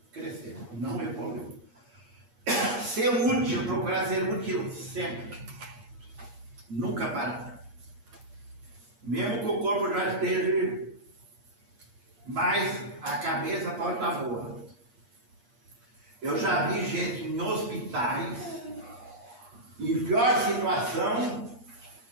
crescemos, não evoluímos. Ser útil, procurar ser útil sempre. Nunca parar. Mesmo que o corpo já esteja, mas a cabeça pode estar boa. Eu já vi gente em hospitais, em pior situação,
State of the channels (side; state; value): left; late; 8.4 ms